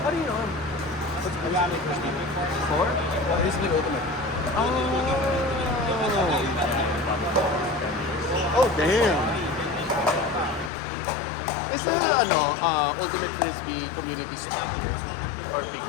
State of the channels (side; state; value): right; drops out; at 10.7 s